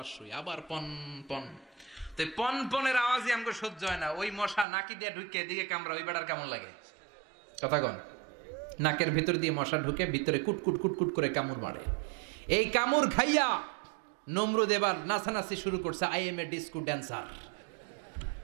শুই, আবার পন পন। তো পন পনের আওয়াজই আমাকে সহ্য হয় না। ওই মশা নাকি দিয়ে ঢুকে এদিকে কামড়া, ওই বেড়ার কেমন লাগে? কথা কন। নাকের ভিতর দিয়ে মশা ঢুকে ভিতরে কুটকুট কুটকুট করে কামড় মারে। এই কামড় খাইয়া নমরুদ এবার নাচানাচি শুরু করছে। I M A disco dancer.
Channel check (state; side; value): drops out; left; at 4.7 s